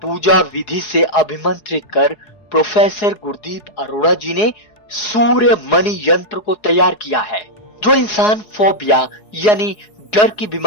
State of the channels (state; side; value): late; right; 4.8 ms